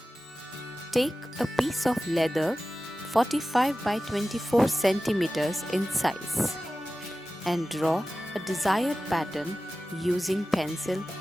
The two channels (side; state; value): both; normal; correlation 0.95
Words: Take a piece of leather 45 by 24 centimeters in size and draw a desired pattern using pencil